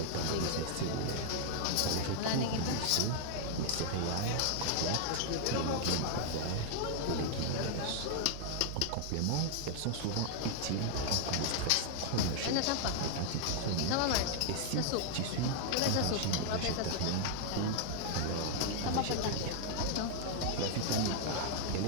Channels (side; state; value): both; different; correlation -0.01